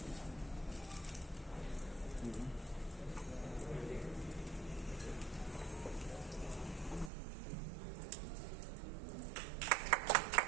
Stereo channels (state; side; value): drops out; left; at 7.1 s